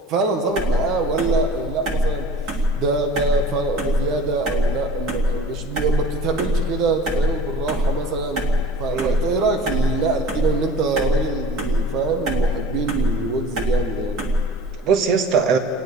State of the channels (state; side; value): normal; both; correlation 0.43